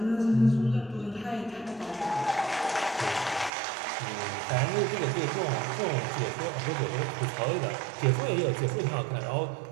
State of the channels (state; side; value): drops out; left; at 3.5 s